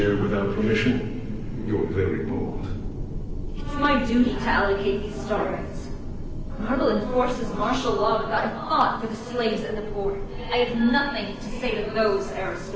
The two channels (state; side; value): identical; both; correlation 1.00